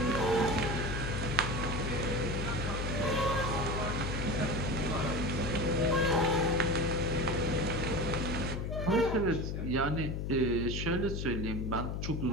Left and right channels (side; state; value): left; noise; hum, 2 dB below the sound